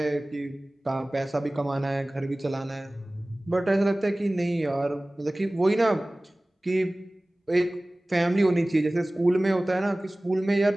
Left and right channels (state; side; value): normal; both; correlation 0.98